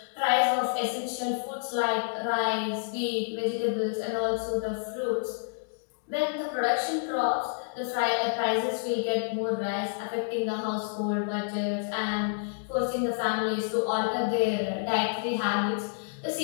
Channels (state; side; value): silent; right; digital silence